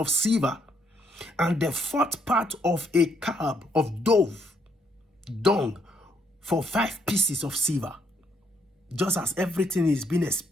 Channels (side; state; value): both; normal; correlation 0.72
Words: silver, and the 4th part of a cab of dove dung for 5 pieces of silver. Just as everything is being